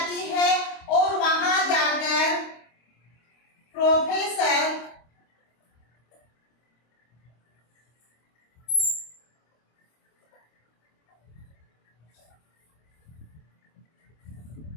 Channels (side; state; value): right; late; 26 ms